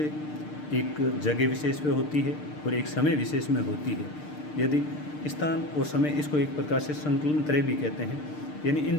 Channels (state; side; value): late; right; 6.6 ms